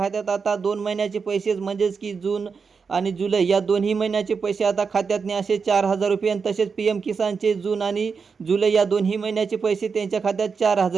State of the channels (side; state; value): left; quieter; 5.4 dB